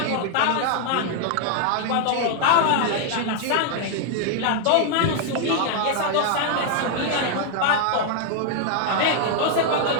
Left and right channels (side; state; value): both; different; correlation 0.00